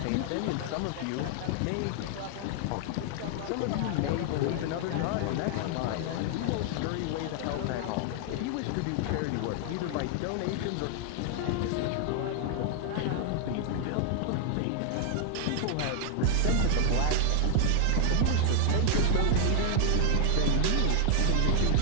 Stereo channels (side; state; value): both; different; correlation 0.00